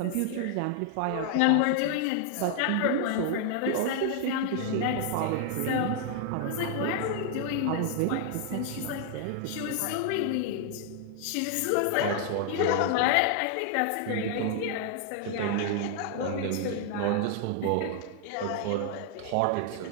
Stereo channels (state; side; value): different; both; correlation 0.00